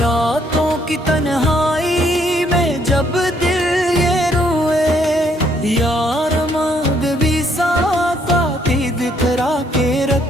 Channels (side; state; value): both; normal; correlation 0.68